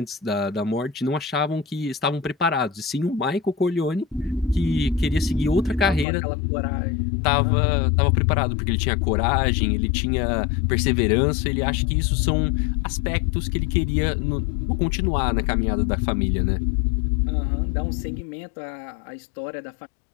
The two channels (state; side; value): drops out; right; at 6.1 s